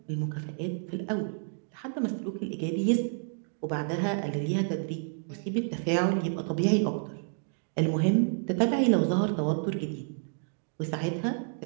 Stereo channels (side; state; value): left; silent; digital silence